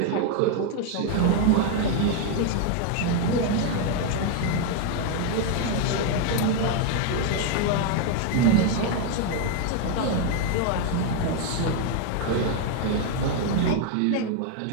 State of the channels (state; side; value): different; both; correlation 0.01